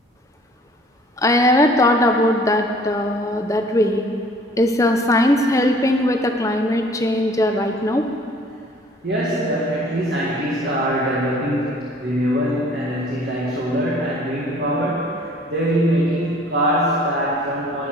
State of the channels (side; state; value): both; normal; correlation 0.53